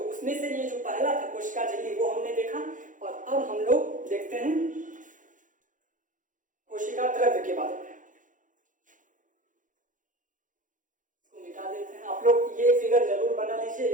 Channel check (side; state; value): left; late; 0.38 ms